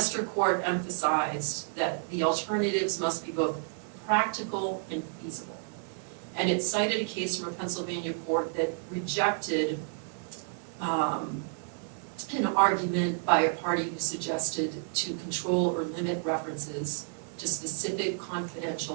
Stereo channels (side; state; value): left; silent; digital silence